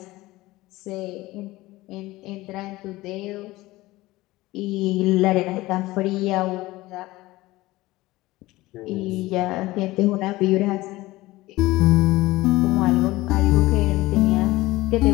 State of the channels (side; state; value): right; quieter; 18.8 dB